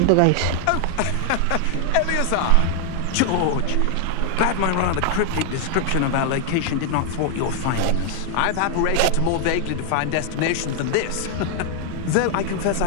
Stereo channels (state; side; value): different; both; correlation 0.00